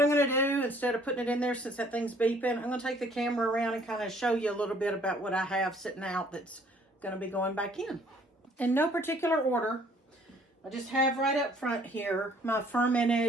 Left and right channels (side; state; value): both; normal; correlation 0.60